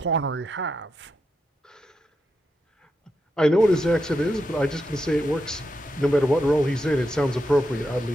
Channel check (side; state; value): both; normal; correlation 0.85